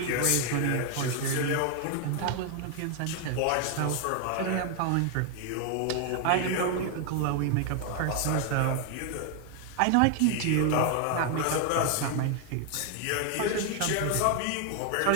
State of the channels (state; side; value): different; both; correlation 0.00